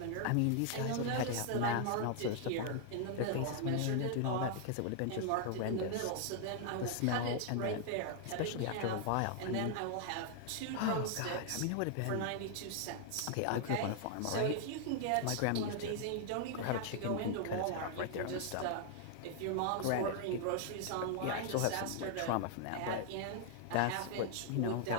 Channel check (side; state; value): both; different; correlation 0.00